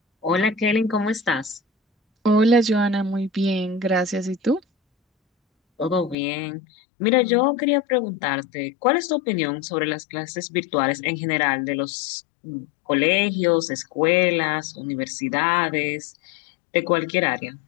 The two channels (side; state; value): right; drops out; at 6.2 s